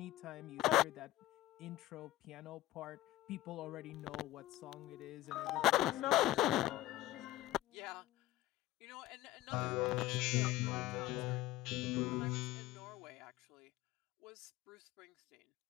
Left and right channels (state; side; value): quieter; right; 16.2 dB